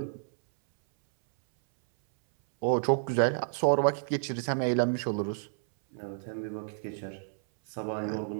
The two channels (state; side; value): silent; left; 58 dB below the other